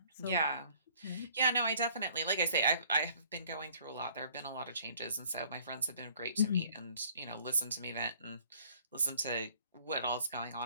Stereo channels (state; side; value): inverted; both; correlation -0.57